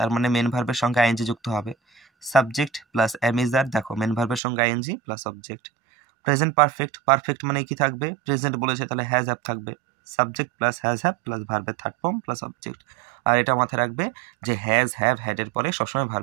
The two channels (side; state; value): left; drops out; at 4.4 s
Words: মানে মেন ভার্বের সঙ্গে আইএনজি যুক্ত হবে, subject plus am is are, দেখো মেন ভার্বের সঙ্গে ING plus object. Present perfect, perfect মানে কি থাকবে, প্রেজেন্ট বলেছে তাহলে হ্যাজ হ্যাভ থাকবে, subject plus has have plus ভার্বের থার্ড ফর্ম প্লাস অবজেক্ট। আর এটা মাথায় রাখবে যে হ্যাজ হ্যাভ হ্যাডের পরে সবসময়